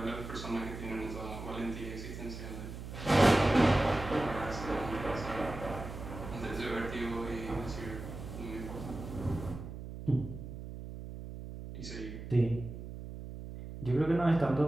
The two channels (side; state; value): right; noise; hum, 10 dB below the sound